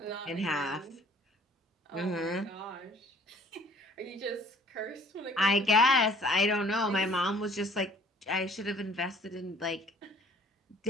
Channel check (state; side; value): normal; both; correlation 0.54